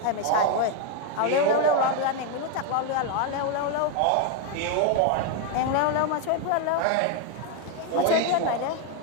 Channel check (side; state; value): both; different; correlation 0.01